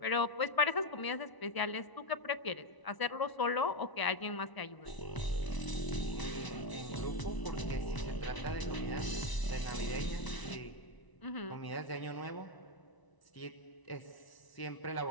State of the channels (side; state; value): right; late; 1.0 ms